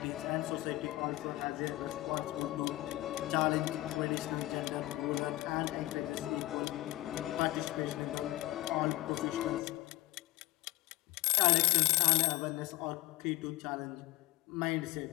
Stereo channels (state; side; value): quieter; right; 18.2 dB